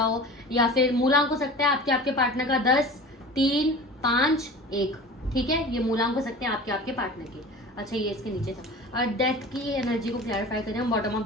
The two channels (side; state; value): both; normal; correlation 0.38